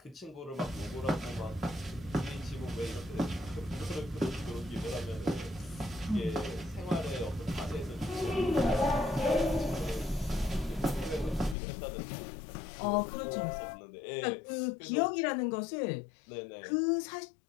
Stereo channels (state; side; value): drops out; right; at 11.6 s